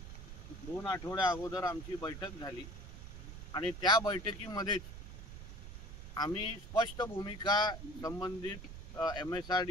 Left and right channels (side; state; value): right; noise; rumble, 11 dB below the sound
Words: अगोदर आमची बैठक झाली आणि त्या बैठकीमध्येच आम्ही स्पष्ट भूमिका संबंधित